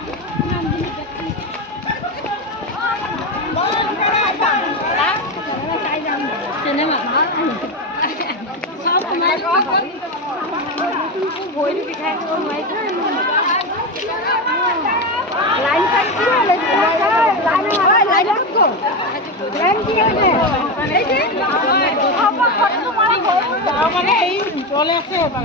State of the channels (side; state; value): both; normal; correlation 0.15